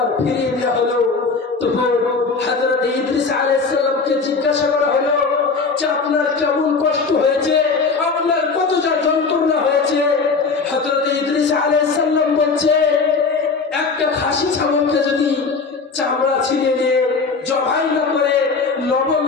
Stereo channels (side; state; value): right; quieter; 4.5 dB